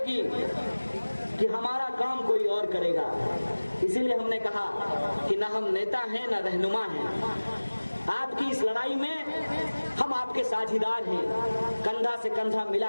कि हमारा काम कोई और करेगा। इसीलिए हमने कहा कि ना हम नेता हैं ना रहनुमा हैं। आपकी इस लड़ाई में हम आपके साझीदार हैं, कंधा से कंधा मिला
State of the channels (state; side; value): inverted; both; correlation -1.00